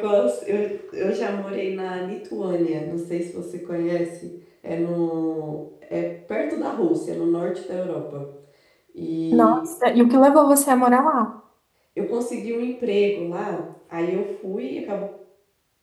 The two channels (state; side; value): identical; both; correlation 1.00